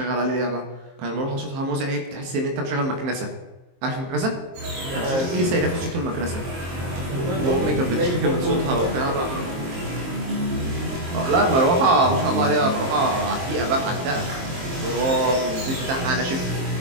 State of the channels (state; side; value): late; left; 23 ms